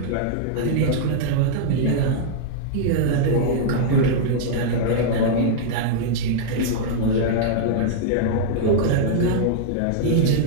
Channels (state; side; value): different; both; correlation -0.02